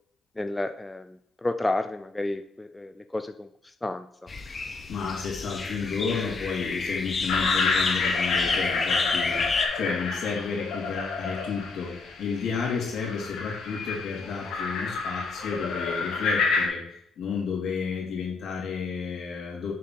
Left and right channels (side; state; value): right; quieter; 4.0 dB